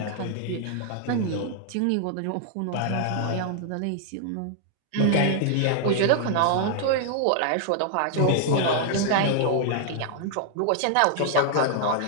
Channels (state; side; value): different; both; correlation 0.00